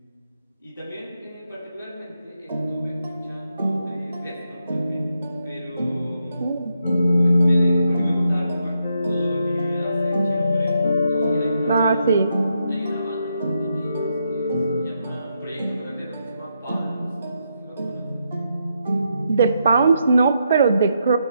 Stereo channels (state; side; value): inverted; both; correlation -0.81